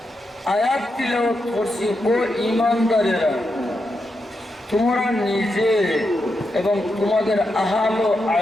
আয়াত তিলাওয়াত করছি। ও ইমানদারেরা, তোমরা নিজে এবং তোমাদের আহাল ও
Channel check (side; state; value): both; normal; correlation 0.85